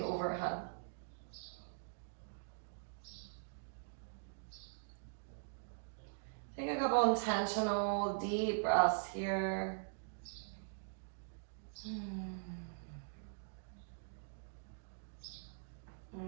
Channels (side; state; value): left; silent; digital silence